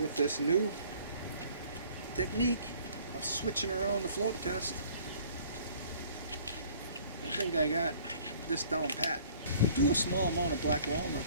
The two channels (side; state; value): both; inverted; correlation -0.55